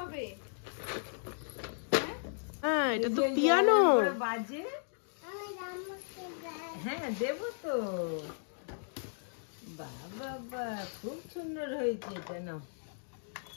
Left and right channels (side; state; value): right; silent; digital silence